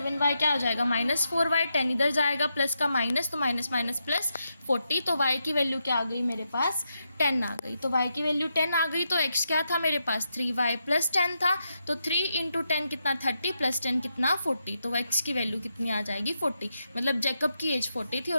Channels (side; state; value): both; inverted; correlation -0.83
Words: क्या हो जाएगा -4y, 10 इधर जाएगा प्लस का माइनस, तो माइनस माइनस प्लस 40। तो y की वैल्यू क्या आ गई मेरे पास 10 आ गई। तो y की वैल्यू 10 आ गई। तो x क्या था मेरे पास 3y प्लस 10 था। तो 3 इंटू 10 कितना 30 प्लस 10 कितना 40। तो x की वैल्यू कितनी आ जाएगी 40। मतलब जैकब की एज 40 थी